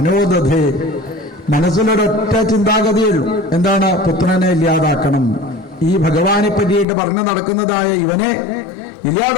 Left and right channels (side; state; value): right; drops out; at 6.9 s